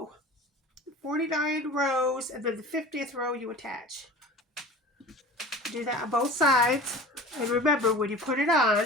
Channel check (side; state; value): both; normal; correlation 0.38